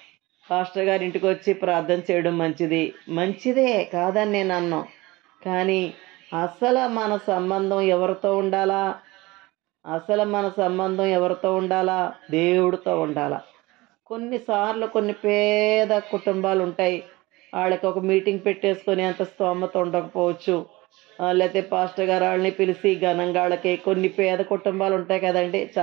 పాస్టర్ గారి ఇంటికి వచ్చి ప్రార్థన చేయడం మంచిదే కాదని నేను అన్నాను. కానీ అసలు మన సంబంధం ఎవరితో ఉండాలా? దేవుడితో ఉండాలా. కొన్నిసార్లు కొన్ని పేద కుటుంబాలు ఉంటాయి, వాళ్ళకి ఒక మీటింగ్ పెట్టేసుకొని అంత స్తోమత ఉండకపోవచ్చు. లేకపోతే పాస్టర్ గారు వాళ్ళని పిలిచి ఘనంగా వాళ్ళకి, కొన్ని పేద కుటుంబాలు ఉంటాయి కదండి,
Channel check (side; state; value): left; quieter; 21.3 dB